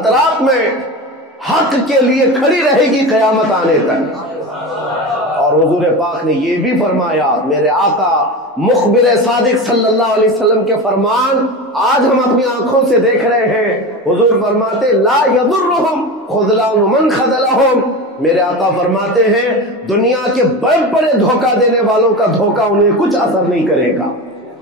میں حق کے لیے کھڑی رہے گی قیامت آنے تک۔ اور حضور پاک نے یہ بھی فرمایا، میرے آقا مخبر صادق صلی اللہ علیہ وسلم کے فرمان آج ہم اپنی آنکھوں سے دیکھ رہے ہیں۔ حضور فرماتے لا یضرہم خذلان من خذلہم، میرے آقا فرماتے ہیں دنیا کے بڑے بڑے دھوکہ دینے والوں کا دھوکہ انہیں کچھ اثر نہیں کرے گا،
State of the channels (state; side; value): normal; both; correlation 0.26